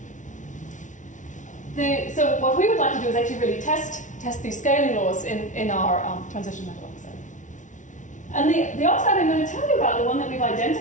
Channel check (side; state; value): right; late; 0.37 ms